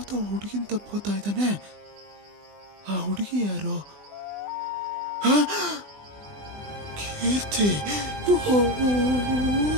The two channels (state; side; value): late; left; 20 ms